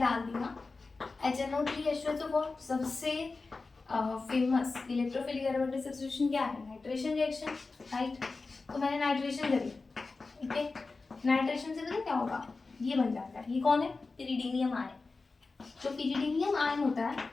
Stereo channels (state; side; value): quieter; right; 3.9 dB